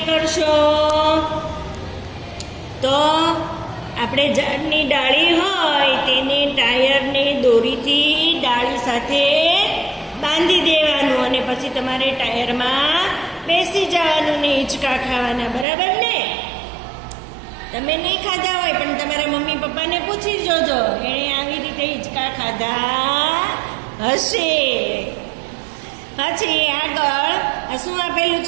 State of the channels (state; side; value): drops out; left; at 15.7 s